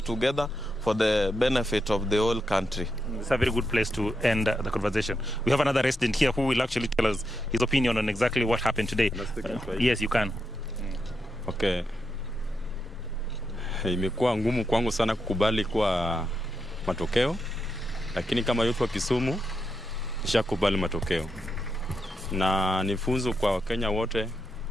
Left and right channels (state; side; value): normal; both; correlation 0.84